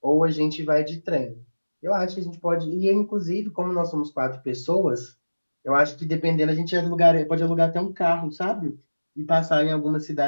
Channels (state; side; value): inverted; both; correlation -1.00